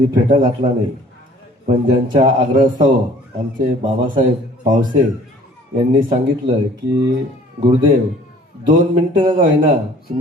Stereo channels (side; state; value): both; normal; correlation 0.53